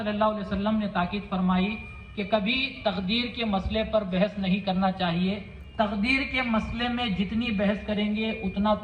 اللہ علیہ وسلم نے تاکید فرمائی کہ کبھی تقدیر کے مسئلے پر بحث نہیں کرنا چاہیے۔ تقدیر کے مسئلے میں جتنی بحث کریں گے اتنا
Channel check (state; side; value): identical; both; correlation 1.00